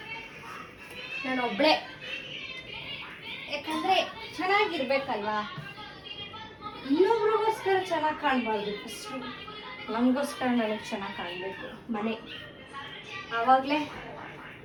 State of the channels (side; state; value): both; identical; correlation 1.00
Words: ನಾನು ಒಬ್ಬಳೇ, ಯಾಕಂದರೆ ಚೆನ್ನಾಗಿರ್ಬೇಕಲ್ವಾ. ಇನ್ನೊಬ್ರಿಗೋಸ್ಕರ ಚೆನ್ನಾಗಿ ಕಾಣಬಾರ್ದು. ಫಸ್ಟು ನಮಗೋಸ್ಕರ ನನಗೆ ಚೆನ್ನಾಗಿ ಕಾಣಬೇಕು ಮನೆ. ಆವಾಗಲೇ